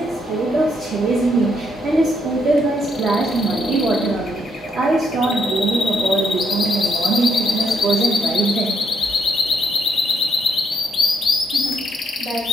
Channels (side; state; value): both; normal; correlation 0.74